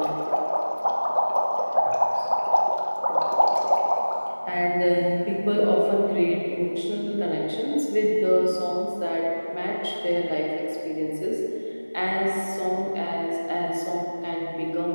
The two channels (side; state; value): both; inverted; correlation -1.00